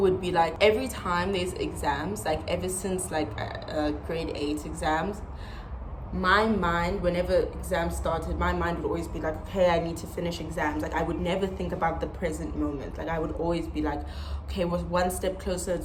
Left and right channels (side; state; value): both; identical; correlation 1.00